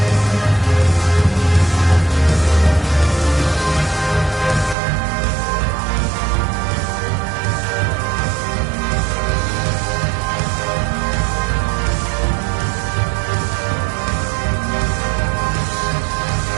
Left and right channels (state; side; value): drops out; left; at 4.8 s